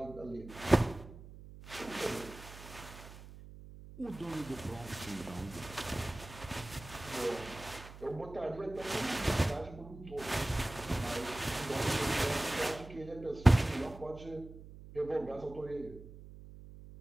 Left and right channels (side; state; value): right; noise; hum, 15 dB below the sound